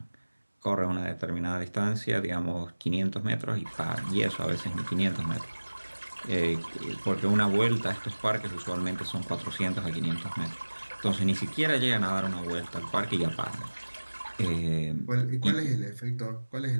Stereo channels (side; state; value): both; inverted; correlation -1.00